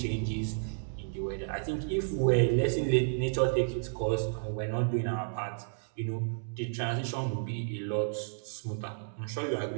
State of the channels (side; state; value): left; silent; digital silence